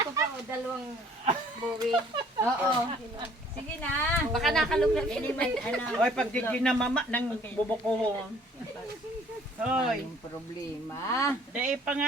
pa o, dalawang buwi. Oo. Sige na. Baka nakaluglag. Oy, pag di ginamama ng bubuko. Oy, Yung problema. dahil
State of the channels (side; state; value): both; normal; correlation 0.57